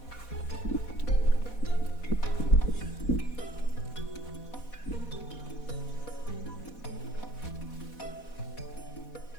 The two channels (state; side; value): late; right; 4.1 ms